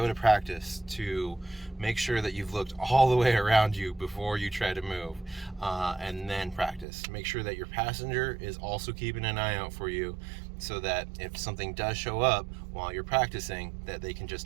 to practice, to make sure that you've looked all the way around you before you try to move, and then practice. Make sure that your passenger is also keeping an eye out for you, so that if something does show up while you're practicing, that they can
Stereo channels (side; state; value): left; drops out; at 6.9 s